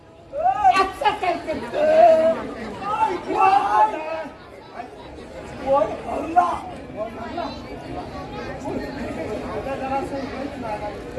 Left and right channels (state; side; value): identical; both; correlation 1.00